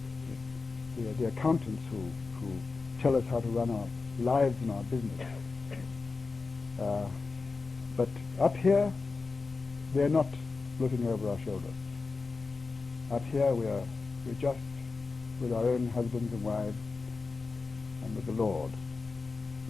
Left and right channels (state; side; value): quieter; right; 4.2 dB